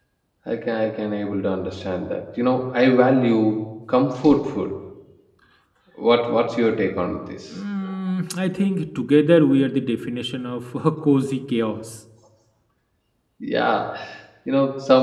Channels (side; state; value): both; identical; correlation 1.00